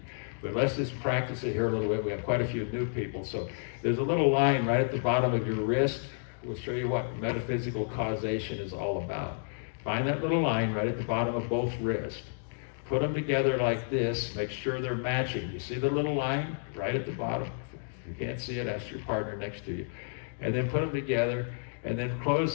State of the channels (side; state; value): right; silent; digital silence